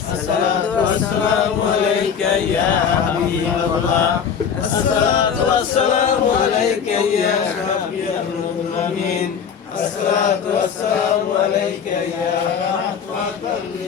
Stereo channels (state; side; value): quieter; right; 7.2 dB